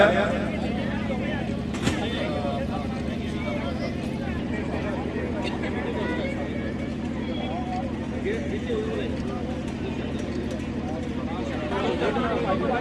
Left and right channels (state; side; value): identical; both; correlation 1.00